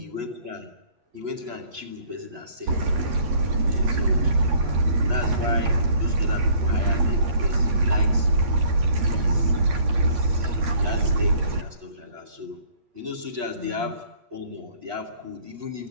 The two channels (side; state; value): left; late; 8.3 ms